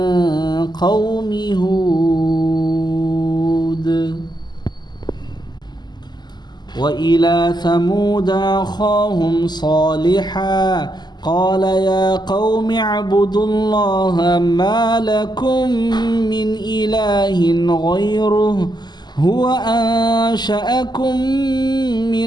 قوم هود. وإلى ثمود أخاهم صالحا قال يا قوم اعبدوا الله ما لكم من إله غيره هو أنشأكم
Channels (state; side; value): late; right; 0.21 ms